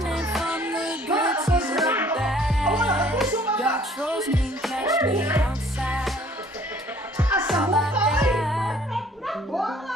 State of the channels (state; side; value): normal; both; correlation 0.57